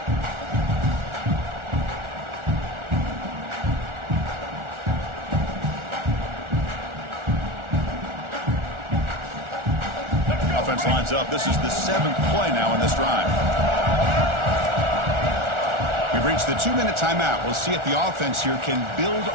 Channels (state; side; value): late; left; 1.4 ms